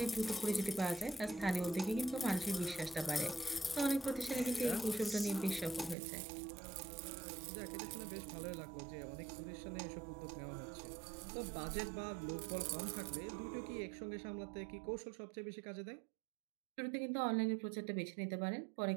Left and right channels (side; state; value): left; drops out; at 6.0 s